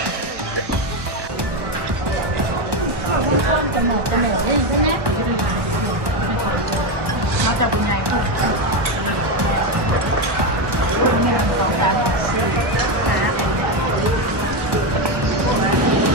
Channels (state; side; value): late; left; 1.2 ms